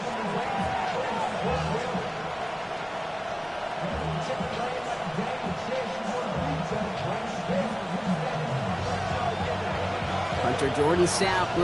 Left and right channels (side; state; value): both; identical; correlation 1.00